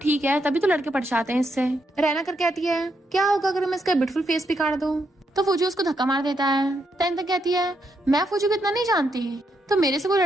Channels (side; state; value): both; normal; correlation 0.79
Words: है तभी तो लड़के पट जाते हैं इससे। रैना कर कहती है क्या होगा अगर मैं इसका ब्यूटीफुल फेस भी काट दूं। तो फूजी उसको धक्का मार देता है। तैन तक कहती है मैं फूजी को इतना नहीं जानती, तो मेरे से कोई